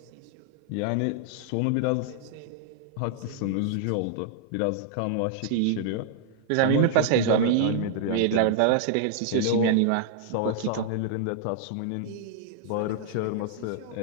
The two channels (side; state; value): both; different; correlation -0.01